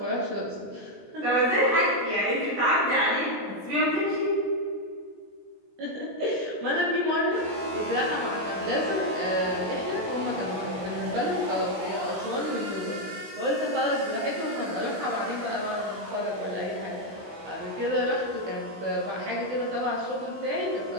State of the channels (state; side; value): late; left; 20 ms